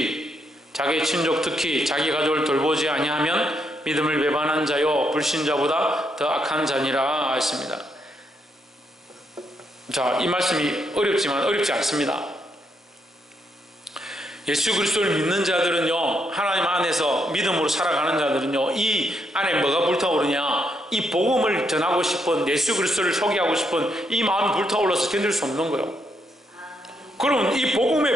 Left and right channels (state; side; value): normal; both; correlation 0.77